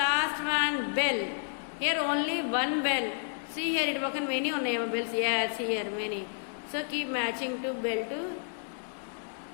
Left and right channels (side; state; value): right; silent; digital silence